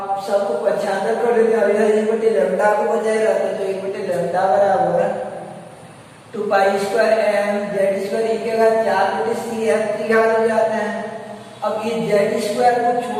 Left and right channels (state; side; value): identical; both; correlation 1.00